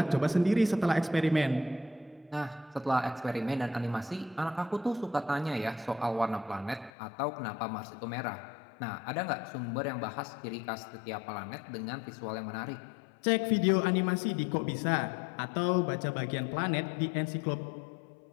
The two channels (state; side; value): drops out; right; at 6.9 s